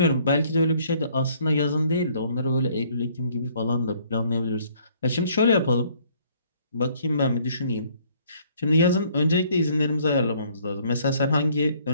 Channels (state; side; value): inverted; both; correlation -0.62